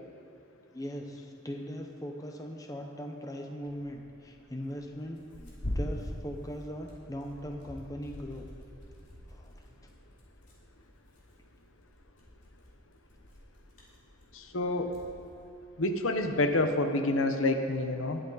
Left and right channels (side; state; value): both; normal; correlation 0.27